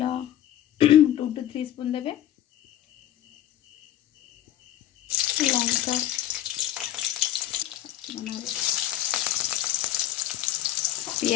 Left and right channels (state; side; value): quieter; right; 12.7 dB